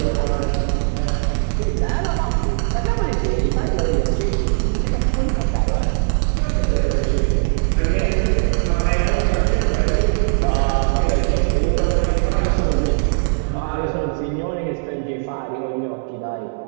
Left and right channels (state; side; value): silent; left; 66 dB below the other